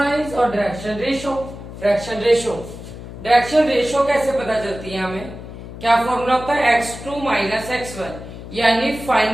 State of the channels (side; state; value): left; noise; hum, 12 dB below the sound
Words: और डायरेक्शन रेशो। डायरेक्शन रेशो कैसे पता चलती है हमें? क्या फॉर्मूला होता है? x2 माइनस x1, यानी